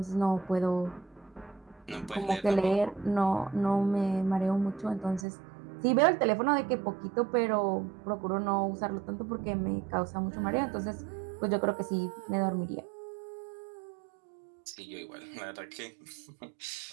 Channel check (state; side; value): drops out; left; at 5.2 s